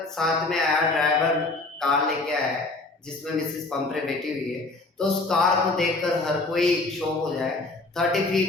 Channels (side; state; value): right; quieter; 3.2 dB